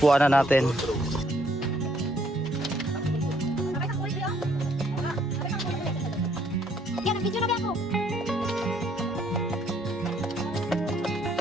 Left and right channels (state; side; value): normal; both; correlation 0.67